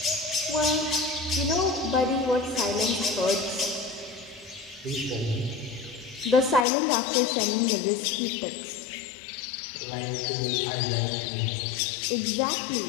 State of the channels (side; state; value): right; drops out; at 6.7 s